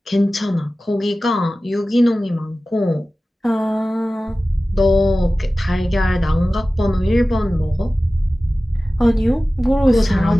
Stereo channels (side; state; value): both; normal; correlation 0.96